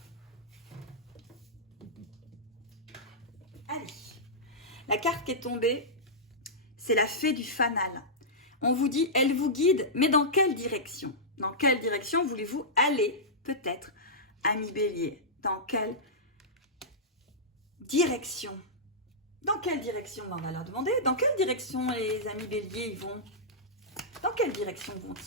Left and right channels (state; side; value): normal; both; correlation -0.13